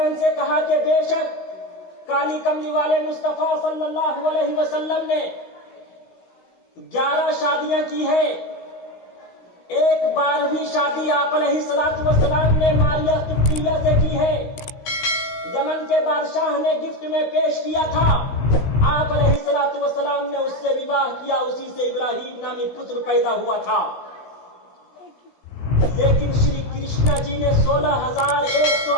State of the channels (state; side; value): late; right; 16 ms